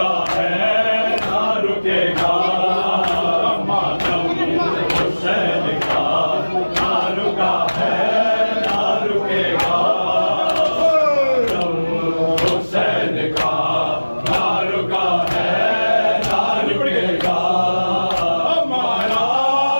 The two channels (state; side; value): inverted; both; correlation -1.00